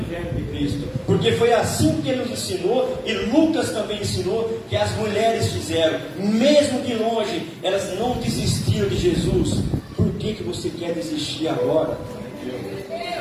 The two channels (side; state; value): both; identical; correlation 1.00